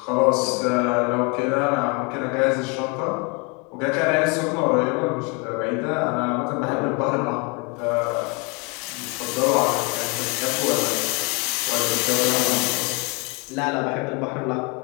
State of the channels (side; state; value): right; quieter; 30.8 dB